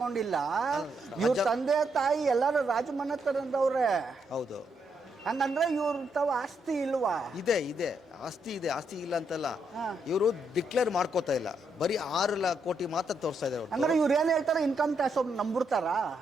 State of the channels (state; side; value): normal; both; correlation 0.78